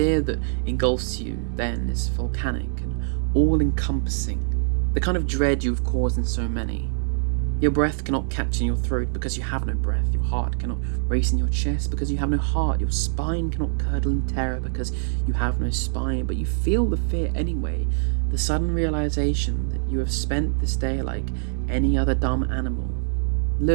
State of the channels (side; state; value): left; silent; digital silence